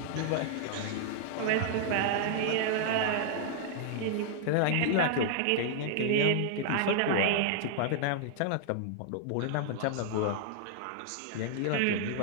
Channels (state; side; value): different; both; correlation -0.01